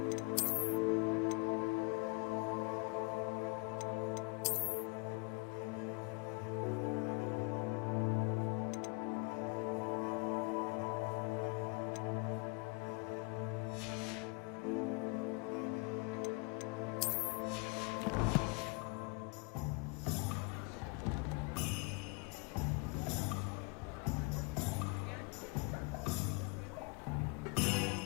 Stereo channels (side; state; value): right; quieter; 29.6 dB